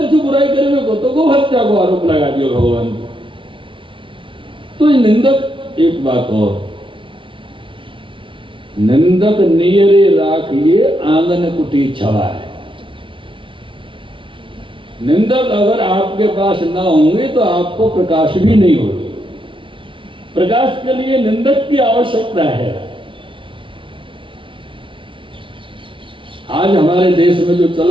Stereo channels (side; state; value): left; late; 0.25 ms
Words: बुराई करने को, तो गो हत्या को आरोप लगा दिया भगवान। तो ये निंदक, एक बात और, निंदक नियरे राखिए आंगन कुटी छवा है। निंदक अगर आपके पास ना होंगे तो आपको प्रकाश भी नहीं होगा। प्रकाश के लिए निंदक की आवश्यकता है। आज हमारे देश में जो चल